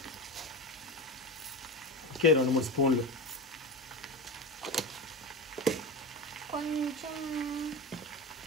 ఓకే 2-3 స్పూన్లు,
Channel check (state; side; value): normal; both; correlation 0.24